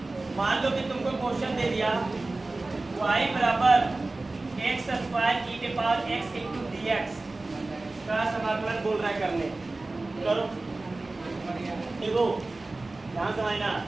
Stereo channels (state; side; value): quieter; left; 3.2 dB